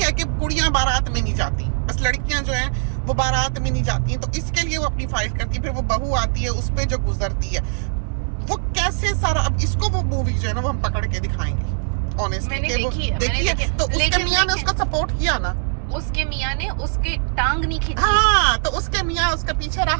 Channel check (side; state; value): left; silent; digital silence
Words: कि कुड़ियाँ बारात में नहीं जाती, बस लड़कियां जो हैं वो बारात में नहीं जाती हैं, तो इसके लिए वो अपनी फाइट करती है। फिर वो बहू आती है, उस पे जो गुजरती है वो कैसे सारा। अब इसको वो मूवी जो है ना वो हम पकड़ के दिखाएंगे ऑनेस्टली कि वो देखिए, तो उसके मियाँ ने उसको सपोर्ट किया ना, उसके मियाँ ने उसके टांग नहीं खींची। हाँ, तो उसके मियाँ उसका पीछे